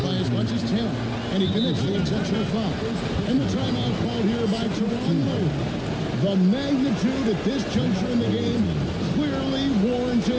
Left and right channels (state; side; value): identical; both; correlation 1.00